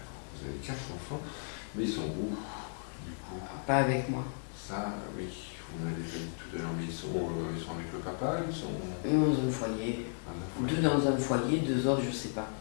vous avez 4 enfants, mais ils sont où, du coup? Pas avec moi. Ça, oui, vous m'avez déjà dit tout à l'heure, mais ils sont avec le papa, ils sont Dans un foyer. dans un foyer. 2 dans un foyer, 2 autres, je sais pas.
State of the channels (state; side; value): silent; right; digital silence